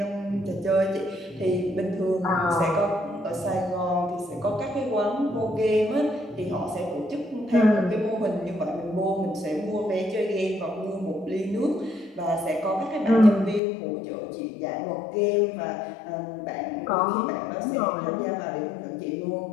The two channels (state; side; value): drops out; right; at 13.6 s